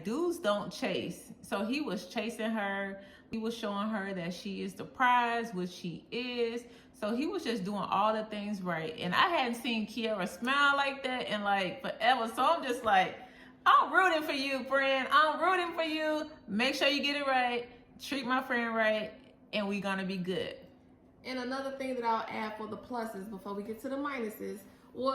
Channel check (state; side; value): identical; both; correlation 1.00